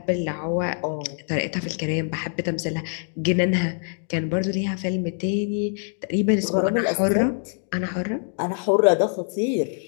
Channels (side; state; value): right; silent; 59 dB below the other